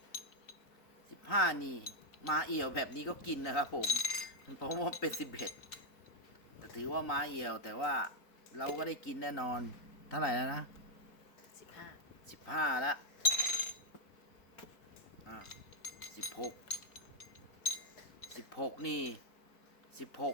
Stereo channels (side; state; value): right; late; 3.9 ms